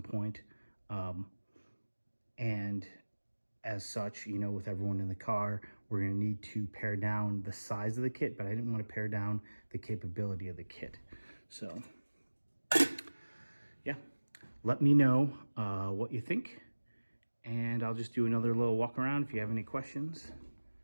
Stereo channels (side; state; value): both; inverted; correlation -1.00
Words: point. And as such, you know, with everyone in the car, we're going to need to pare down the size of the kit, but I didn't want to pare down the capability of the kit. So, yeah, let me know what you think, and I'll just do another little walk around. If you have any questions,